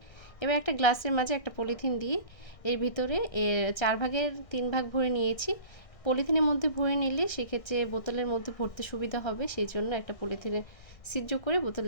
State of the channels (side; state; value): right; late; 1.6 ms